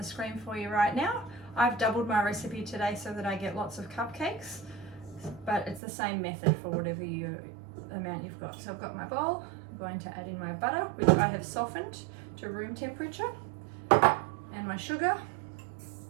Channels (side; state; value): left; drops out; at 5.8 s